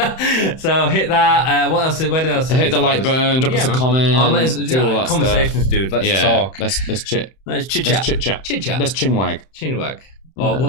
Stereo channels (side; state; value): right; late; 31 ms